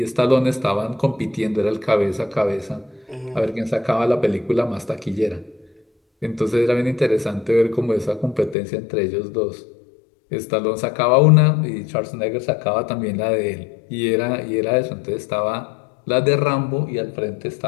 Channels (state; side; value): drops out; right; at 8.6 s